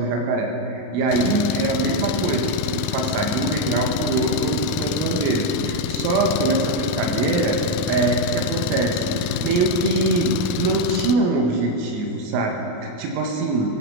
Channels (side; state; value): left; late; 28 ms